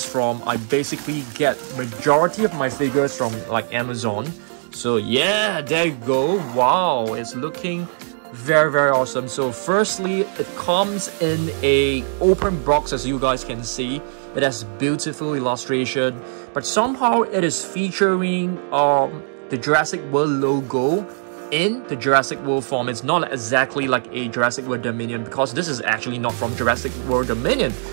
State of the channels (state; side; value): silent; left; 65 dB below the other